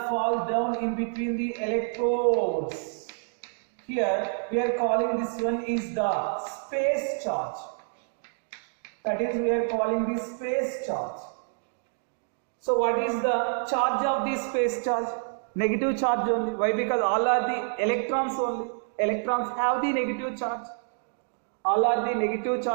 fall down in between the electrodes. Here we are calling this one is the space charge. That is, we are calling this space charge. So what is the charge of the space charge? Negative charge only. Why? Because all are the electrons only. Electrons have the negative charge. All are the negative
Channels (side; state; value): left; silent; digital silence